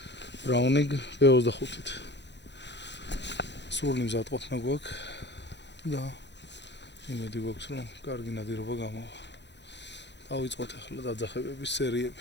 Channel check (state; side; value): late; right; 0.51 ms